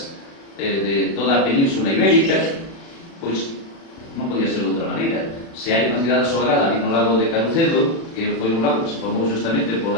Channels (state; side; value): late; right; 36 ms